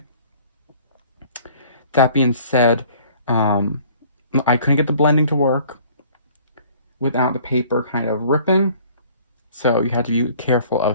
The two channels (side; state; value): both; inverted; correlation -0.53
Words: That being said, I couldn't get the blending to work without the paper kind of ripping, so you had to be careful